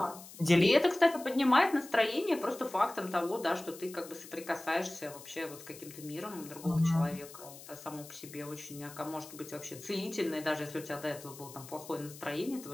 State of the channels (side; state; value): left; noise; hiss, 16 dB below the sound